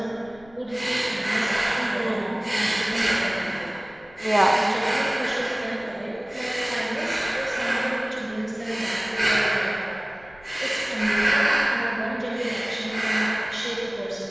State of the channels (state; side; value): noise; left; rumble, 25 dB below the sound